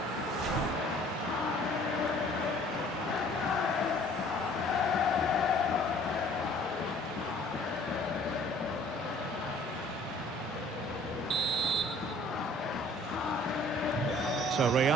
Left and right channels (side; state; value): both; normal; correlation 0.54